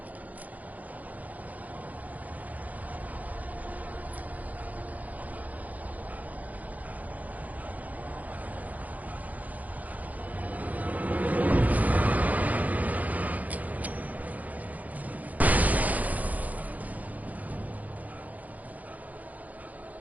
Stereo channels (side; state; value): left; late; 0.078 ms